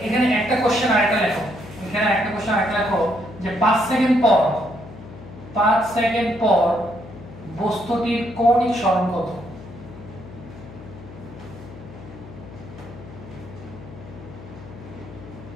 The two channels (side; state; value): left; noise; hum, 15 dB below the sound